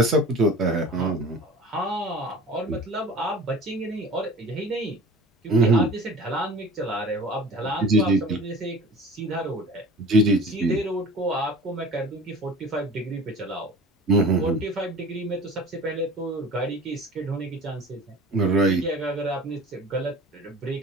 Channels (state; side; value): normal; both; correlation 0.41